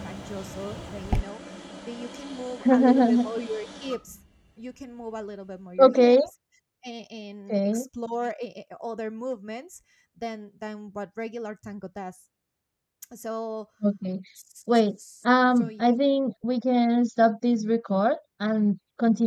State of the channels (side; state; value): both; identical; correlation 1.00